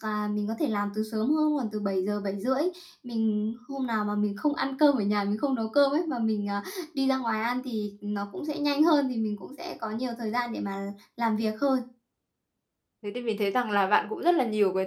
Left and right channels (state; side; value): identical; both; correlation 1.00